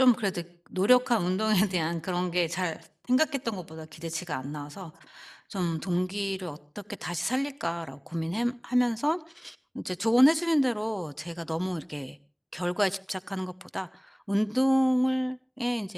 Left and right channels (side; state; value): both; identical; correlation 1.00